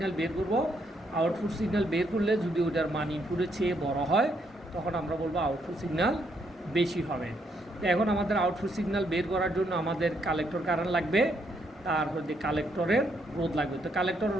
বের করব। আউটপুট সিগন্যাল বের করলে যদি ওটার মান ইনপুটের চেয়ে বড় হয় তখন আমরা বলবো আউটপুট সিগন্যাল বেশি হবে। তো এখন আমাদের আউটপুট সিগন্যাল বের করার জন্য আমাদের কালেক্টর কারেন্ট লাগবে, তারপর কালেক্টরের রোধ লাগবে। তো কালেক্টরের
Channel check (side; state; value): both; normal; correlation 0.74